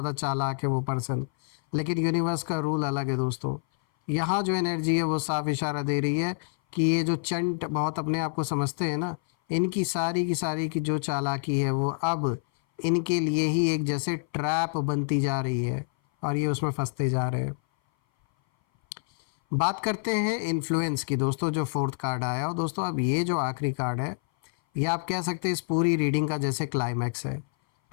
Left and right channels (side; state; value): right; silent; 58 dB below the other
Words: चालाक है वो पर्सन, लेकिन यूनिवर्स का रूल अलग है दोस्तों। यहाँ जो एनर्जी है वो साफ इशारा दे रही है कि ये जो चंट बहुत अपने आप को समझते हैं ना, इनकी सारी की जो चालाकी है वो अब इनके लिए ही एक जैसे ट्रैप बनती जा रही है, और ये उसमें फंसते जा रहे हैं। बात करते हैं इन्फ्लुएंस की दोस्तों, जो फोर्थ कार्ड आया। और दोस्तों अब ये जो आखिरी कार्ड है, ये आप कह सकते हैं इस पूरी रीडिंग का जैसे क्लाइमैक्स है,